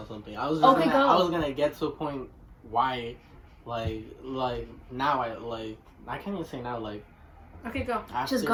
something. I was gonna get to a point why, like now I can't even say now, like. Okay, go. After, Just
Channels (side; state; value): both; identical; correlation 1.00